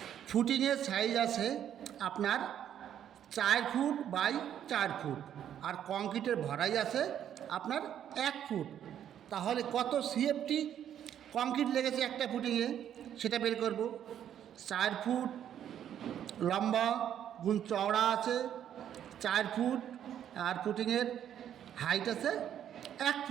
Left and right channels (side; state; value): left; quieter; 10.0 dB